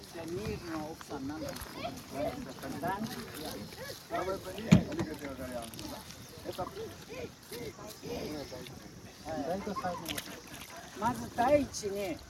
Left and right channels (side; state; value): both; identical; correlation 1.00